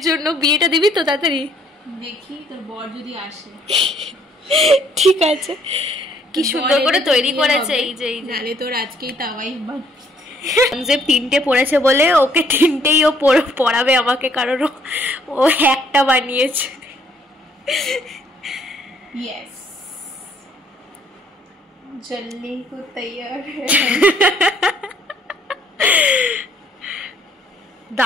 জন্য। বিয়েটা দিবি তো তাড়াতাড়ি? দেখি তোর বর যদি আসে। ঠিক আছে। কি সুন্দর করে তৈরি করেছে। এই যে নালে তোর আজকেই তাওয়াই যে 3টে পড়েছে বলে ওকে 3টেই ও পড়াবে আমাকে, কারণ ও একটা বানিয়েছে। यस, जल्दी को तैयार है।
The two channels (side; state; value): both; normal; correlation 0.65